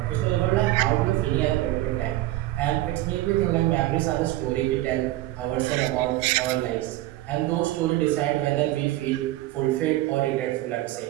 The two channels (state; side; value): quieter; left; 16.4 dB